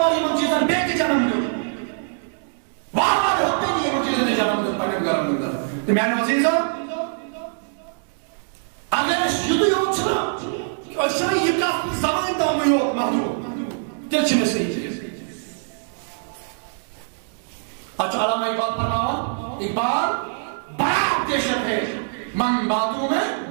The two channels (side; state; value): left; silent; 63 dB below the other